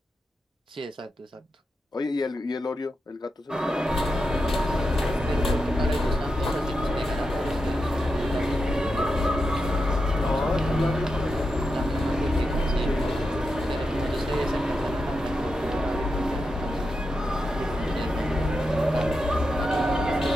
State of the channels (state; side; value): normal; both; correlation 0.88